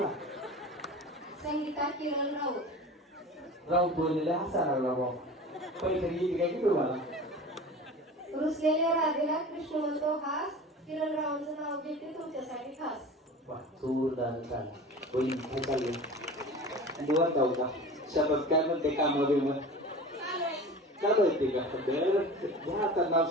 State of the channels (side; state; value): both; normal; correlation 0.36